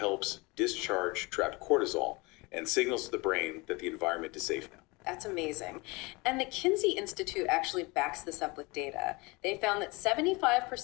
discharge trapped cortisol and signals to the brain that the environment is safe now. That's amazing. And the Kinsey Institute actually backs this up with data. They found that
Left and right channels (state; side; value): quieter; right; 25.6 dB